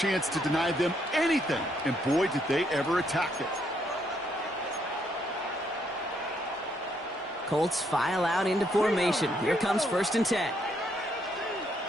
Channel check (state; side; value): normal; both; correlation 0.73